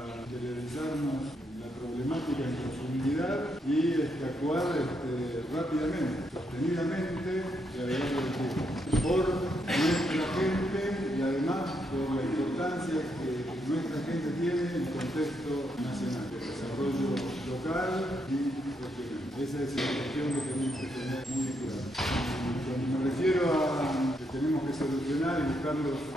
interiorizarnos la problemática en profundidad y actuar rápidamente, sostenidamente y a lo largo del tiempo, por nuestra gente y además por la importancia que nuestra gente tiene en el contexto nacional, el desarrollo local y regional. Esa es la cuestión que tenemos que tener muy clara. Cuando me refiero a que tenemos que solucionar y buscar los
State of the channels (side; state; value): both; normal; correlation 0.78